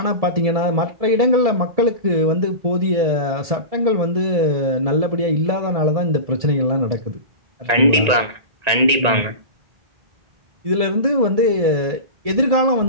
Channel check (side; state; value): left; late; 1.9 ms